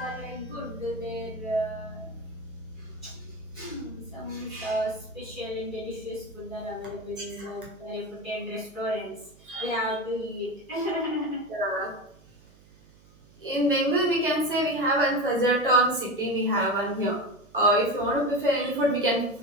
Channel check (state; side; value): noise; right; hum, 26 dB below the sound